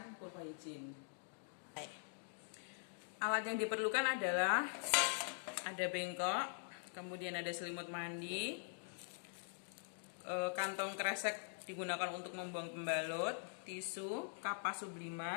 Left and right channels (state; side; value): silent; right; digital silence